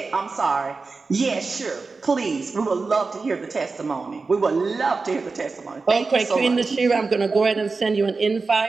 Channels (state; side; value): quieter; left; 4.1 dB